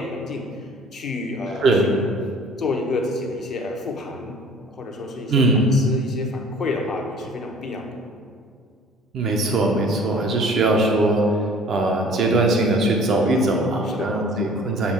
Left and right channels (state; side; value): normal; both; correlation 0.50